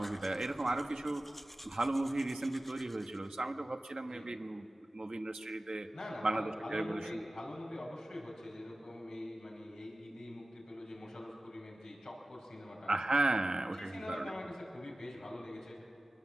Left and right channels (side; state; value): both; normal; correlation 0.96